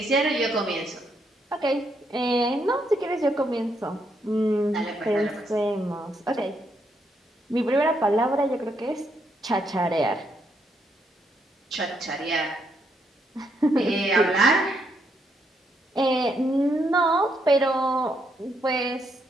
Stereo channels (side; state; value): both; normal; correlation 0.76